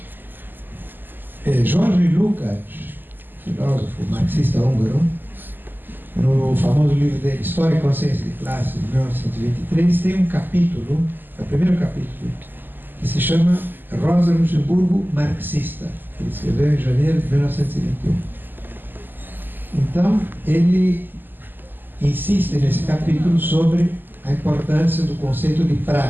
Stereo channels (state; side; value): late; left; 0.091 ms